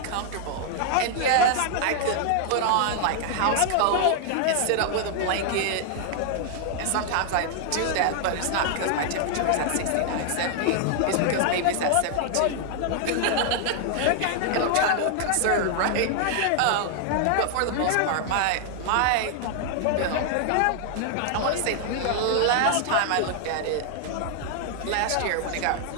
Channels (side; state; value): both; different; correlation 0.00